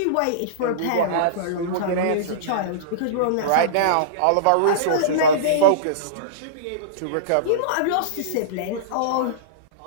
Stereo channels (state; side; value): different; both; correlation -0.04